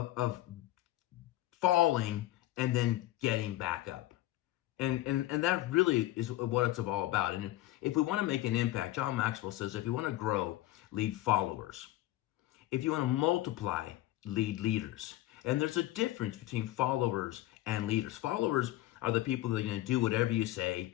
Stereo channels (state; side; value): quieter; right; 15.8 dB